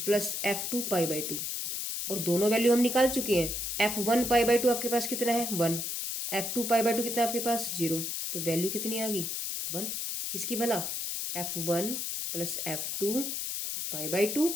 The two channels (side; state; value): left; noise; hiss, 3 dB below the sound